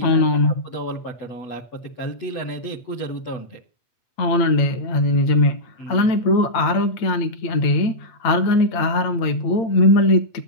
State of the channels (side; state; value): right; late; 8.8 ms